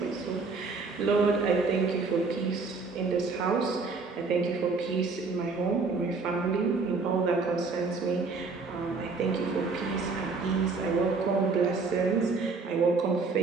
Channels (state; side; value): quieter; left; 4.3 dB